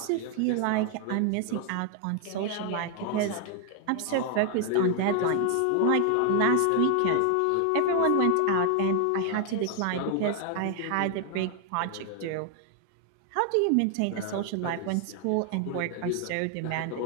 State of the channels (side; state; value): both; different; correlation 0.00